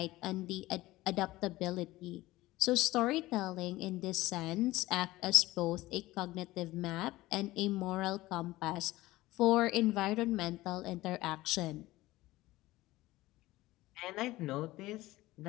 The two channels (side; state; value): right; quieter; 18.1 dB